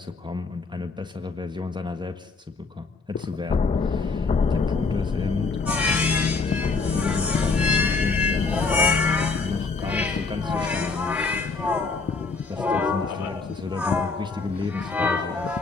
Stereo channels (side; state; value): right; quieter; 4.2 dB